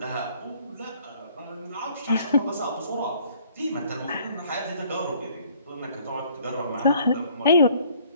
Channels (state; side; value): inverted; both; correlation -0.59